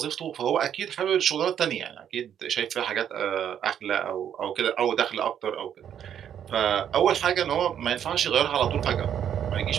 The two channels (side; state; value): left; quieter; 9.3 dB